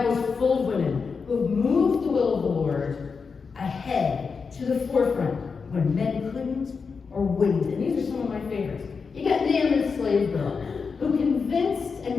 is full of women who have moved the will of the Lord ahead to the forefront when men couldn't or wouldn't. And these are some of my favorites. You got Naaman's slave girl, who convinced a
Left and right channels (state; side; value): quieter; right; 5.2 dB